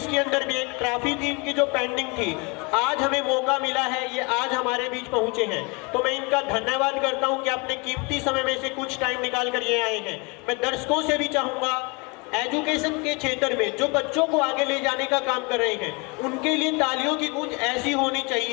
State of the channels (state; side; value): quieter; right; 29.7 dB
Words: के अंदर भी एक ट्रॉफी थी इनकी जो पेंडिंग थी, आज हमें मौका मिला है, ये आज हमारे बीच पहुंचे हैं, तो मैं इनका धन्यवाद करता हूं कि अपने कीमती समय में से कुछ टाइम निकाल कर ये आए हैं। मैं दर्शकों से भी चाहूंगा एजुकेशन के क्षेत्र में जो बच्चों को आगे ले जाने का काम कर रहे हैं, उनके लिए तालियों की गूंज ऐसी होनी